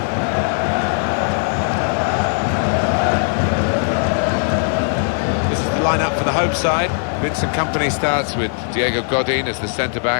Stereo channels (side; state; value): right; silent; 58 dB below the other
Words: This is the lineup for the home side. Vincent Kompany starts with Diego Godin as the